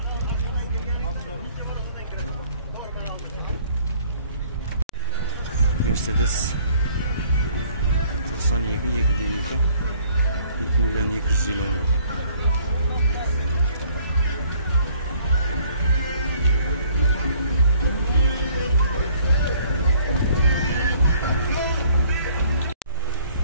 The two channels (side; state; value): both; inverted; correlation -0.59